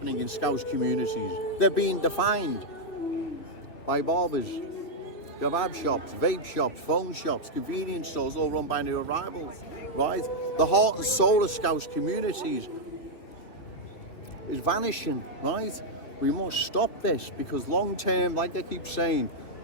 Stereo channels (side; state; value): right; late; 3.2 ms